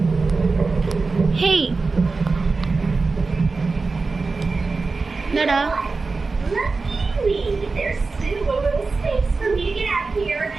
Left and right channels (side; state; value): left; quieter; 4.0 dB